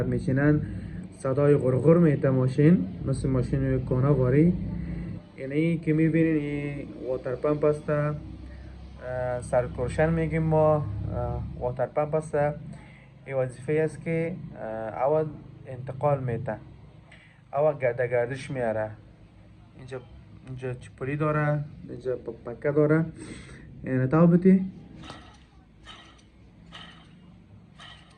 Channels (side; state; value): both; identical; correlation 1.00